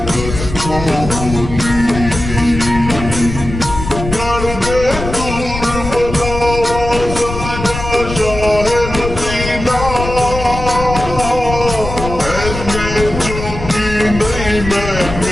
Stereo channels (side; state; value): left; noise; rumble, 7 dB below the sound